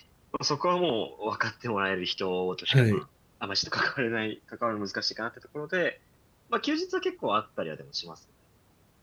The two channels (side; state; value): both; identical; correlation 1.00